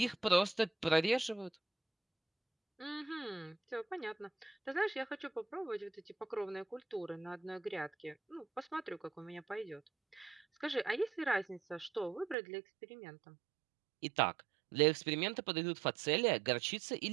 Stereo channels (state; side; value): drops out; left; at 12.4 s